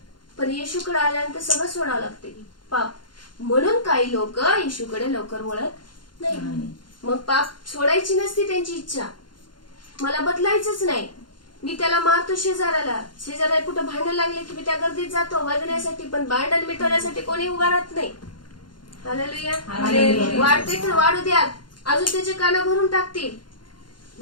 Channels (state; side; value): late; right; 0.71 ms